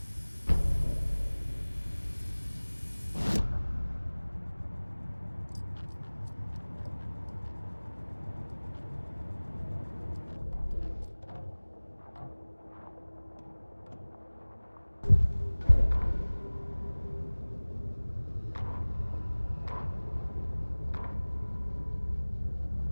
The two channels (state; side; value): inverted; both; correlation -1.00